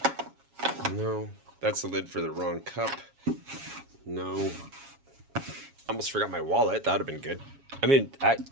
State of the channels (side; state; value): left; late; 7.3 ms